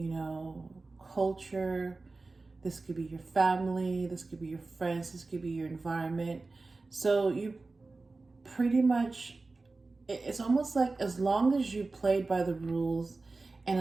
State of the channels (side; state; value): left; quieter; 3.6 dB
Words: know, culture. This could be your family, this could be your friends, this could be your environment. So you pretty much, it's almost like as long as you played by the rules and